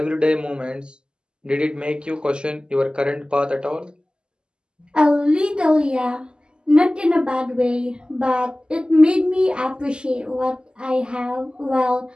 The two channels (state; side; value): late; left; 0.047 ms